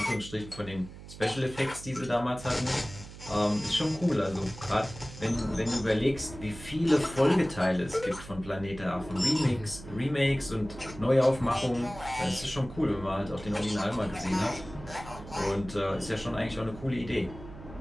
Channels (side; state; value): right; noise; hum, 15 dB below the sound